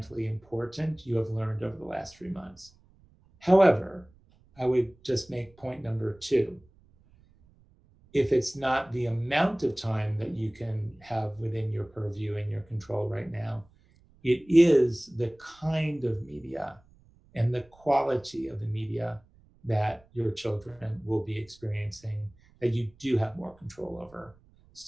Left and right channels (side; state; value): right; noise; rumble, 29 dB below the sound